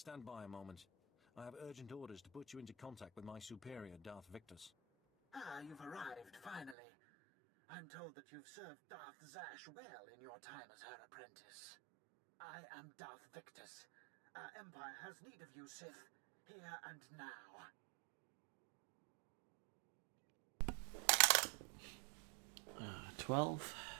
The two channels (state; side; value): drops out; left; at 6.8 s